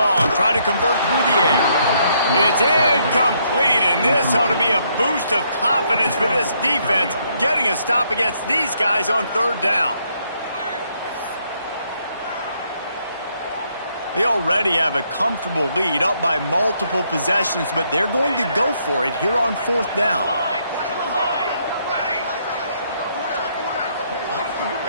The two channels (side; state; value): both; inverted; correlation -0.72